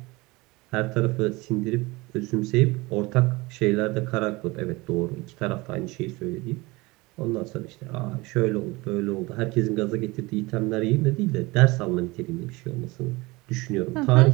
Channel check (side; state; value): left; quieter; 22.9 dB